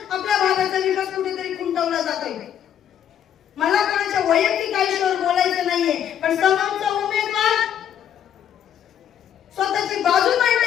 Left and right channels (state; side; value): quieter; right; 9.7 dB